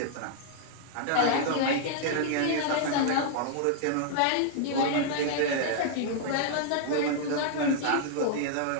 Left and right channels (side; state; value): both; different; correlation -0.01